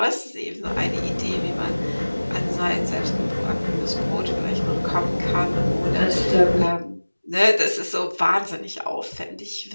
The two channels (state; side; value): inverted; both; correlation -1.00